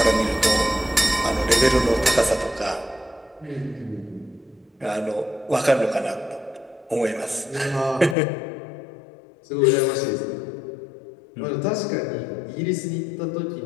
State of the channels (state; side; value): drops out; right; at 8.2 s